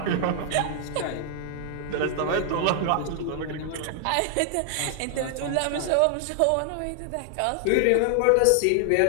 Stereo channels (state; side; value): different; both; correlation 0.00